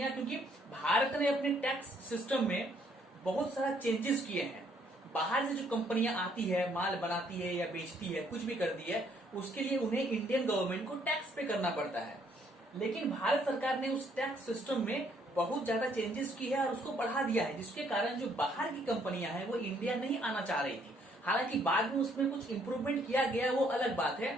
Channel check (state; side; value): normal; both; correlation 0.67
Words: क्योंकि भारत ने अपने टैक्स सिस्टम में बहुत सारा चेंजेस किए हैं। बाहर से जो कंपनियां आती है, माल बनाती है या बेचती है, कुछ भी करती है, उसके लिए उन्हें इंडियन गवर्नमेंट को टैक्स पे करना पड़ता है। लेकिन भारत सरकार ने उस टैक्स सिस्टम में बहुत ज्यादा चेंजेस की है और उसको बढ़ा दिया है, जिसके कारण जो बाहर की कंपनियां हैं वो इंडिया नहीं आना चाह रही थी। हालांकि बाद में उसमें कुछ इंप्रूवमेंट किया गया, वो अलग बात